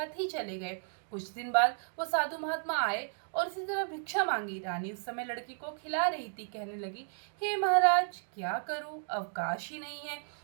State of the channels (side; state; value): left; silent; digital silence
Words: ही चले गए। कुछ दिन बाद वो साधु महात्मा आए और इसी तरह भिक्षा मांगी। रानी उस समय लड़की को खिला रही थी। कहने लगी, हे महाराज, क्या करूं, अवकाश ही नहीं है,